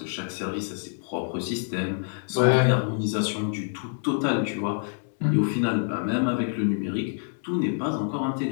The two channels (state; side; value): silent; right; 60 dB below the other